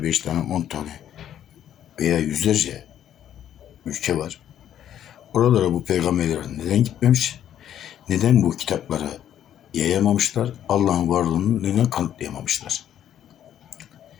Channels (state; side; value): quieter; right; 10.6 dB